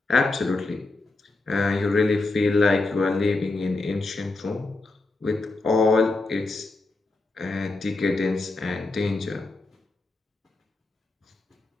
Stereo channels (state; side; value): quieter; right; 3.3 dB